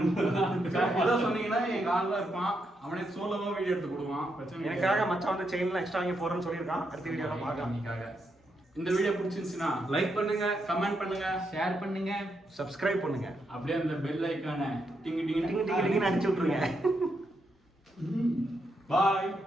ஏதோ சொன்னீங்கன்னா எங்க ஆள் தான் இருப்பான். அவனே சோலோவா வீடியோ எடுத்து கொடுவான். பிரச்சனை எனக்காக மச்சான் வந்து செயின்லாம் எக்ஸ்ட்ரா வாங்கி போறேன்னு சொல்லியிருக்கான். அடுத்த வீடியோல பார்க்கலாம். நீக்காக இந்த வீடியோ பிடிச்சிருந்துச்சுன்னா லைக் பண்ணுங்க, கமெண்ட் பண்ணுங்க, ஷேர் பண்ணுங்க, சப்ஸ்கிரைப் பண்ணுங்க. அப்படியே அந்த பெல் ஐகானை டிங் டிங் டிங் டிங் டிங்னு அடிச்சு விட்டுருங்க. பாய்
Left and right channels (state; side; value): normal; both; correlation 0.81